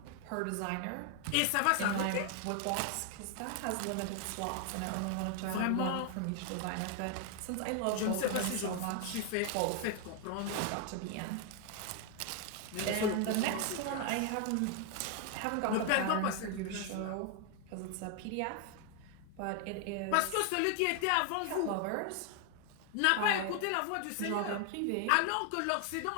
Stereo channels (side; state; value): both; different; correlation 0.00